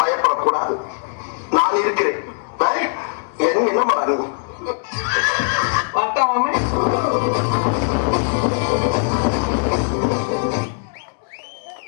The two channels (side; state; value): right; silent; digital silence